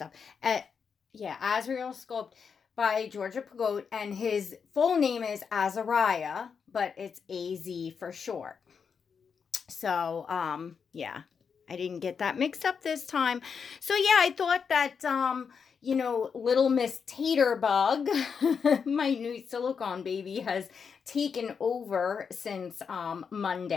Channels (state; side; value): quieter; right; 6.2 dB